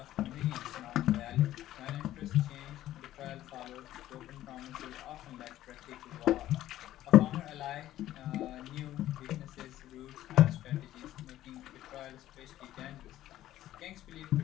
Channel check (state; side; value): quieter; right; 13.7 dB